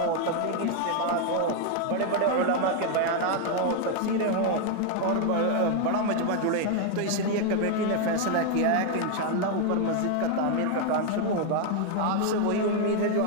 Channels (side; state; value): both; different; correlation 0.01